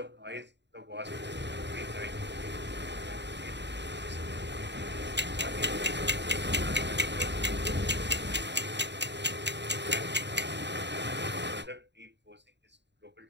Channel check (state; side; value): late; left; 0.51 ms